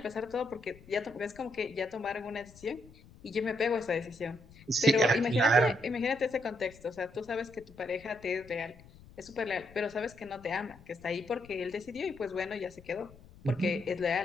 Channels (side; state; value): left; noise; rumble, 22 dB below the sound